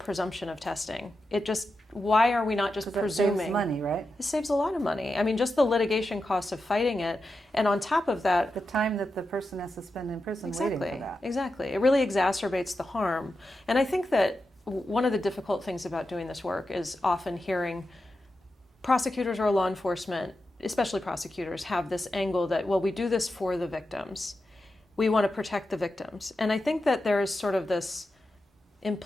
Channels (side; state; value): both; normal; correlation 0.90